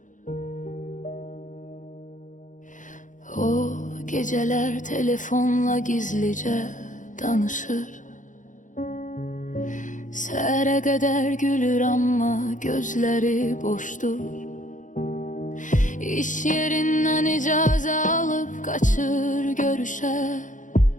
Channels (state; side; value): late; right; 0.37 ms